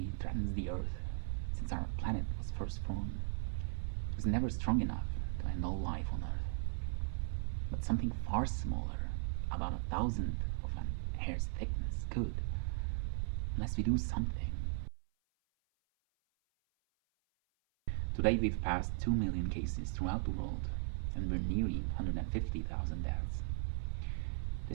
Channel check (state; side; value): silent; left; 53 dB below the other